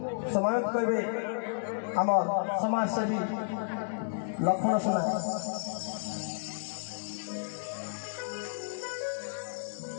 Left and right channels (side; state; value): right; silent; digital silence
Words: समायोजित करेंगे आम समाज सेवी लक्षण सुना